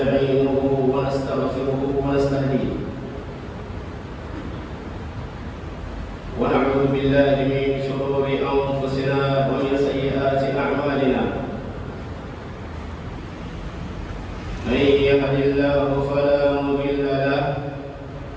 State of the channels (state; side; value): identical; both; correlation 1.00